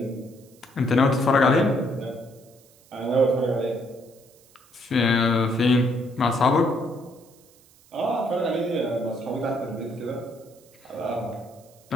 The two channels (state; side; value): noise; right; hiss, 28 dB below the sound